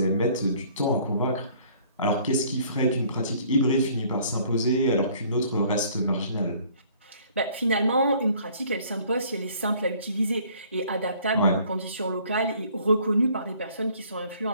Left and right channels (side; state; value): both; inverted; correlation -0.57